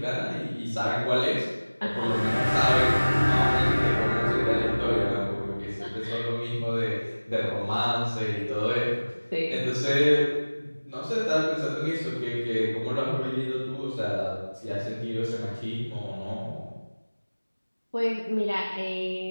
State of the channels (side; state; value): both; inverted; correlation -1.00